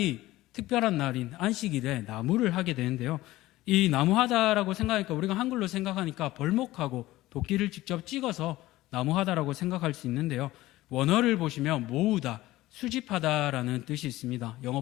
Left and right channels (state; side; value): quieter; right; 17.1 dB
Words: 특별한 날인 안식일에 나무를 하게 되는데요. 이 나무하다라고 생각하니까, 우리가 한글로 생각하니까 벌목하고 도끼를 직접 찍어서 나무하다라고 생각할 수 있는데요. 원어를 보시면 모으다, 수집하다라는 뜻이 있습니다.